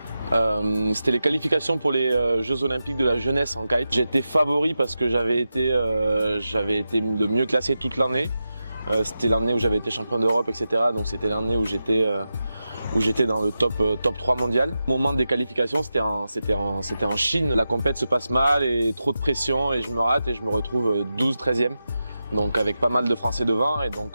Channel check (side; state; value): both; inverted; correlation -0.91